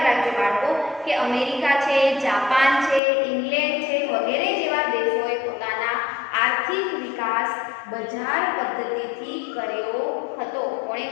રાખજો બાળકો, કે અમેરિકા છે, જાપાન છે, ઇંગ્લેન્ડ છે વગેરે જેવા દેશોએ પોતાના આર્થિક વિકાસ બજાર પદ્ધતિથી કર્યો હતો. કોણે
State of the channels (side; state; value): right; drops out; at 3.0 s